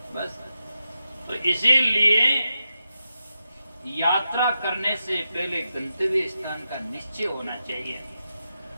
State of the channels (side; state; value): both; inverted; correlation -0.88